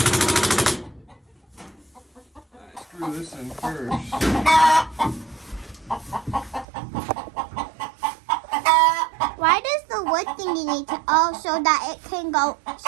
Screw this in first. Why does the wood thingy need to? Oh, so that it can go,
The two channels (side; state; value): left; drops out; at 6.7 s